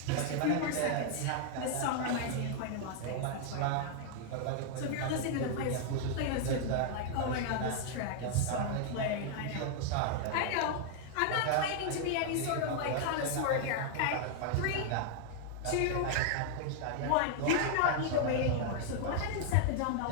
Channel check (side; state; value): both; different; correlation 0.00